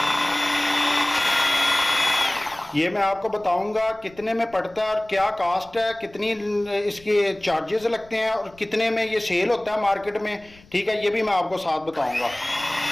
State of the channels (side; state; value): left; noise; rumble, 26 dB below the sound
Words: ये मैं आपको बताऊंगा कितने में पड़ता है और क्या कास्ट है, कितनी इसके चार्जेस लगते हैं और कितने में ये सेल होता है मार्केट में। ठीक है, ये भी मैं आपको साथ बताऊंगा।